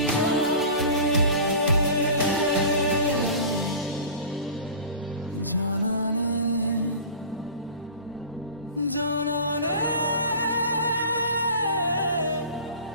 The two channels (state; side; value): inverted; both; correlation -0.37